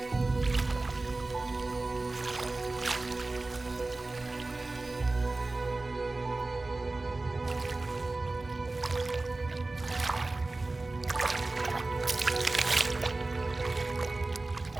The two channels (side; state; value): left; quieter; 3.2 dB